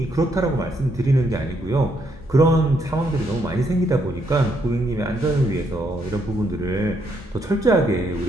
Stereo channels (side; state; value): both; normal; correlation 0.74